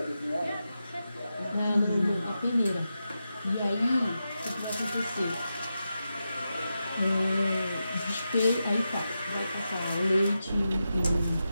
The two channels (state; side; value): inverted; both; correlation -0.89